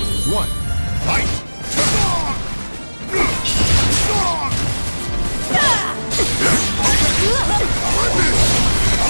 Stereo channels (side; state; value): both; inverted; correlation -1.00